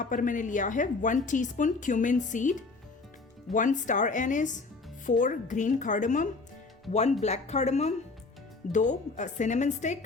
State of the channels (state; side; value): quieter; right; 3.9 dB